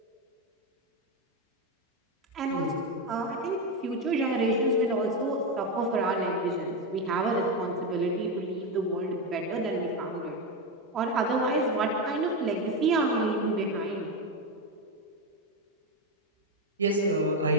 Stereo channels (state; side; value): normal; both; correlation 0.11